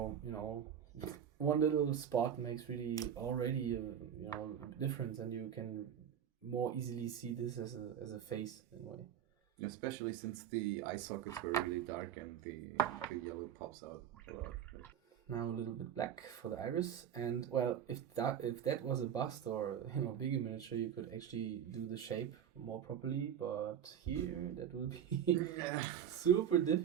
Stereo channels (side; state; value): left; quieter; 9.1 dB